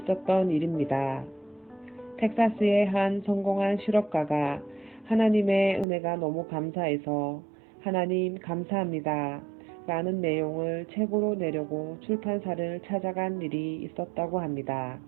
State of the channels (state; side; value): drops out; left; at 5.9 s